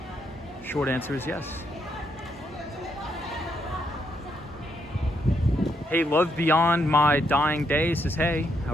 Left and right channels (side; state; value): both; normal; correlation 0.77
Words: Short answer is yes. Hey, Love Beyond My Dying Day says, hey, how